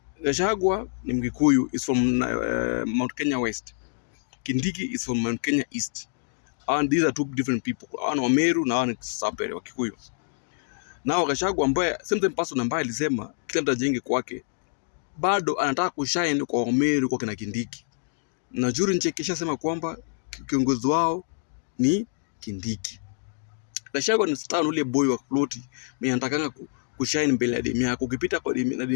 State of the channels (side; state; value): right; silent; digital silence